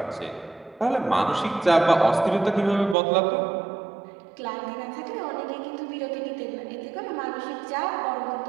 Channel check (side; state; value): left; drops out; at 3.0 s